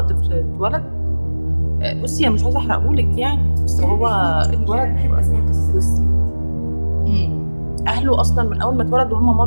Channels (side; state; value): both; inverted; correlation -1.00